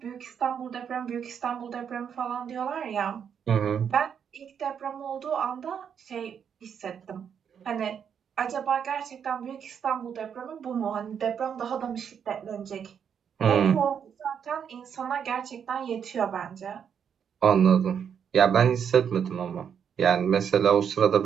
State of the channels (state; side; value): quieter; left; 7.7 dB